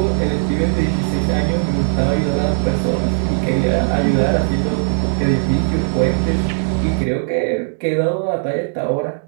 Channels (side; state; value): left; silent; 67 dB below the other